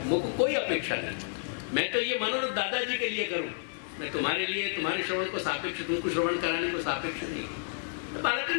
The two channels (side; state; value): right; silent; 58 dB below the other